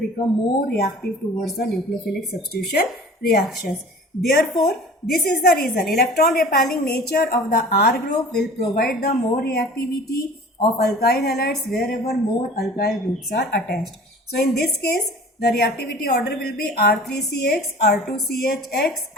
more reactive towards the nucleophilic substitution reactions. Therefore, this is the reason electron repelling nature of the R group will provide the more reactivity of alkyl halides wherever more alkyl groups are attached. So in this case, the reactivity order will be R3CX, R2CHX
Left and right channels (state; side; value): normal; both; correlation 0.43